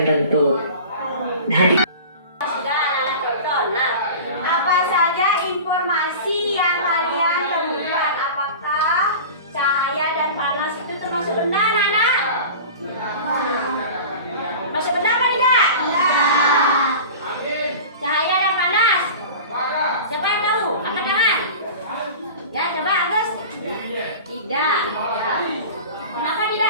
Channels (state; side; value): inverted; both; correlation -0.36